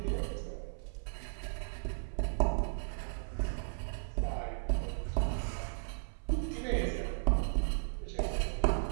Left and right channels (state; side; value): silent; left; 54 dB below the other